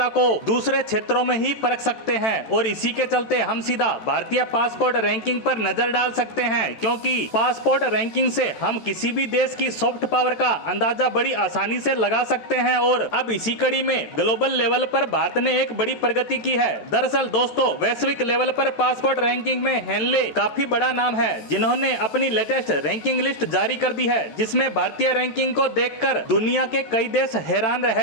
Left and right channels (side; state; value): right; late; 13 ms